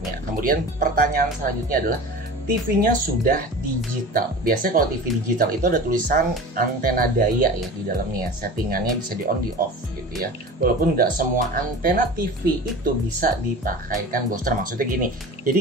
Kemudian pertanyaan selanjutnya adalah TV-nya sudah digital. Biasanya kalau TV digital itu ada tulisan antena daya ya di dalamnya. Settingannya bisa di on, di off gitu ya. Walaupun nggak semua antena TV itu bisa dipakaikan booster. Maksudnya gini, jadi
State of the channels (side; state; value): both; normal; correlation 0.35